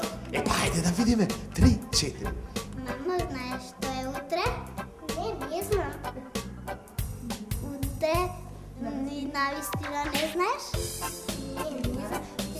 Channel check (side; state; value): both; identical; correlation 1.00